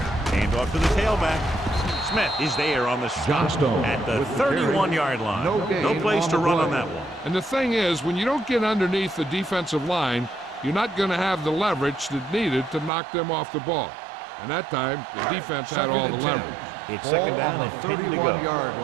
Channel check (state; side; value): drops out; left; at 12.9 s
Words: day. Hand off to the tailback. Smith is there on the stop at the 31-yard line. No place to run on that one. And the thing is, when you don't get underneath the defensive line, you're not going to have the leverage that's needed to knock them off the ball. And that time, the defense had all the leverage. It's 2nd down and 10 to go. Get